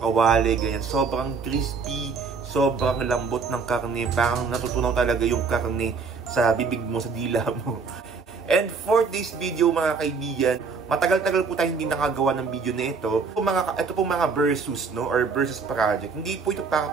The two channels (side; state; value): left; quieter; 5.0 dB